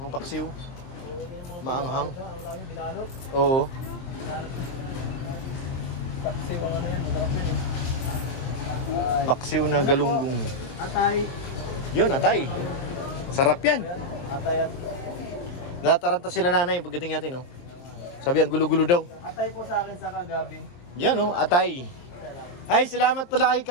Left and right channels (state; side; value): late; right; 23 ms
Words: paksiw. Maanghang. Oo. Paksiw ang ano yan, masarap yan eh. Paksiw na galunggong. Atay. Yun, atay. Sarap yan. Atay at... Nataranta sila nanay pagdating natin, no? Sabi ang gulo-gulo daw. Atay po sa akin sa kagabi. Yan, no? Atay. Ay, salamat pala kay